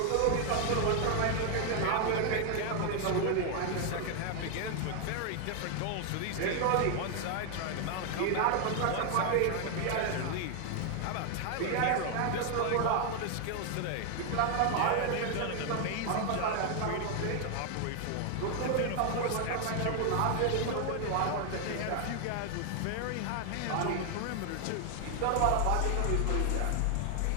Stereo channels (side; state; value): both; different; correlation 0.00